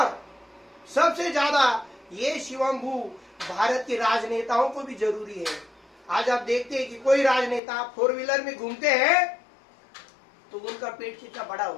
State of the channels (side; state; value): right; drops out; at 7.6 s